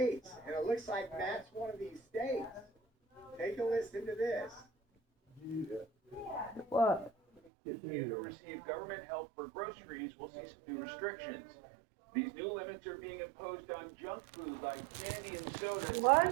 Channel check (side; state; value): left; drops out; at 7.4 s